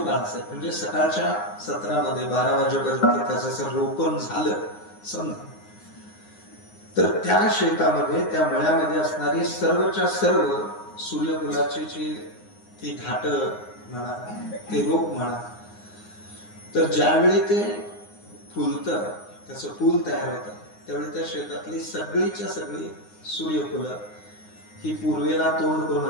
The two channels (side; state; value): right; late; 9.6 ms